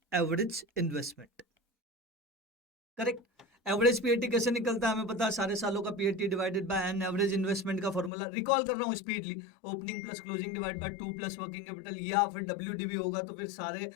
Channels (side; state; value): right; drops out; at 8.1 s